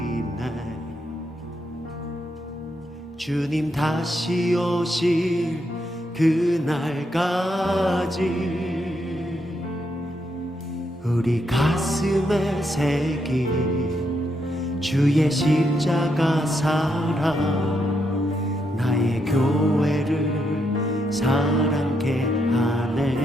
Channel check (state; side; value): normal; both; correlation 0.79